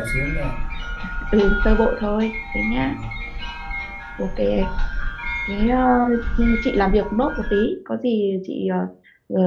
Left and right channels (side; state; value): both; identical; correlation 1.00